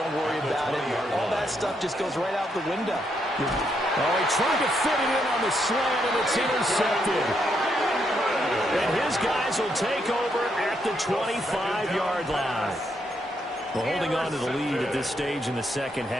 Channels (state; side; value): normal; both; correlation 0.77